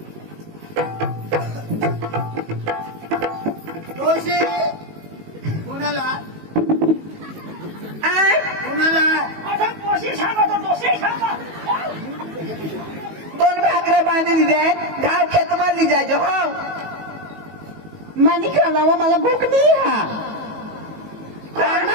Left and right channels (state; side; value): late; left; 19 ms